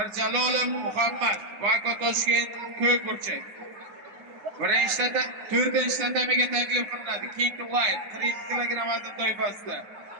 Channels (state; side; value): late; left; 9.5 ms